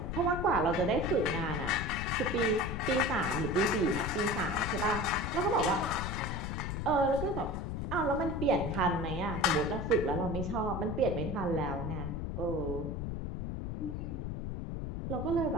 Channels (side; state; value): left; noise; rumble, 4 dB below the sound